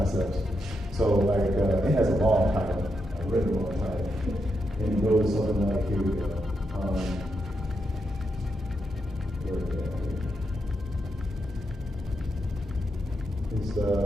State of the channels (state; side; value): normal; both; correlation 0.83